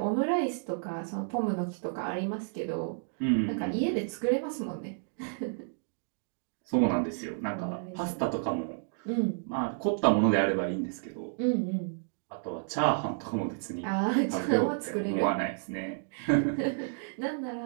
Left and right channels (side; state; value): left; silent; digital silence